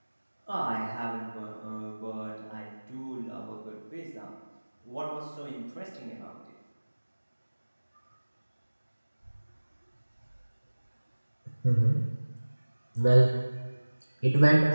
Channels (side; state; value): both; inverted; correlation -1.00